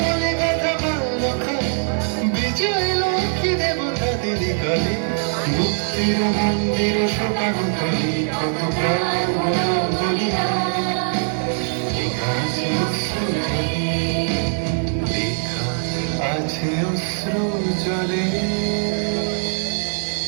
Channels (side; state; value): left; silent; digital silence